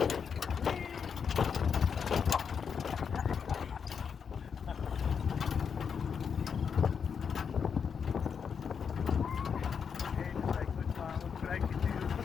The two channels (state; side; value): quieter; right; 6.6 dB